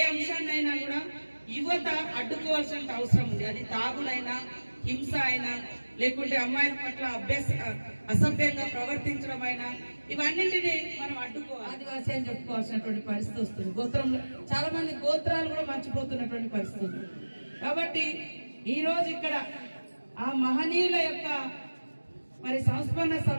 అంశాన్నైనా కూడా యువత అడ్డుకోవాల్సిన అవసరం ఉంది. అది తాగులైనా, హింస అయినా లేకుంటే అమ్మాయిల పట్ల అసభ్యంగా ప్రవర్తించడం అయినా ఇవన్నింటినీ మనం అడ్డుకోవాలి. ఆదివాసీ అని చెప్పుకోవాల్సినటువంటి పరిస్థితి వస్తుంది. గోత్రంలో చాలా మంది గోత్రాలు కూడా మర్చిపోతున్నటువంటి పరిస్థితి. కాబట్టి ఈ రోజు ఇక్కడ ఆ మహనీయుల యొక్క మరి సంస్మరణ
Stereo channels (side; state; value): both; inverted; correlation -1.00